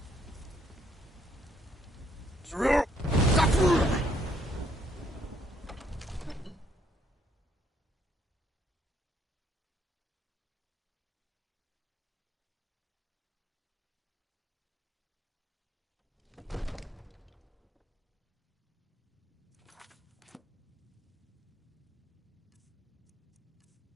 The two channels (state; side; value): normal; both; correlation 0.68